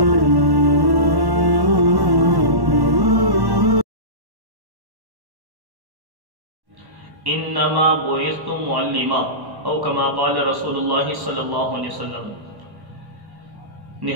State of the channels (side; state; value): left; late; 1.1 ms